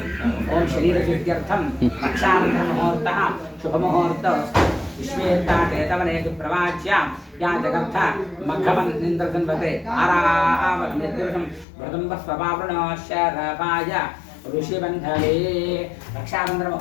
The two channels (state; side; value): drops out; right; at 11.7 s